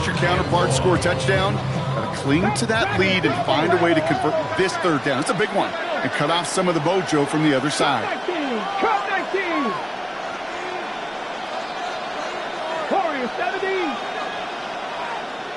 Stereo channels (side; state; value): both; identical; correlation 1.00